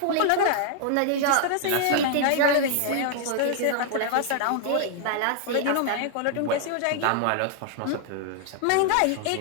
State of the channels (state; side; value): different; both; correlation 0.00